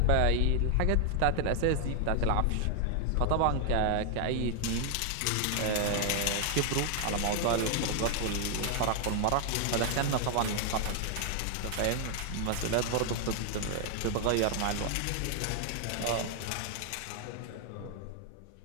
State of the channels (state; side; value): different; both; correlation 0.00